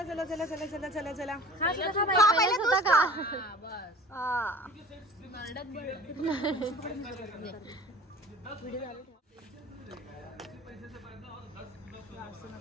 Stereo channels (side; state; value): both; normal; correlation 0.44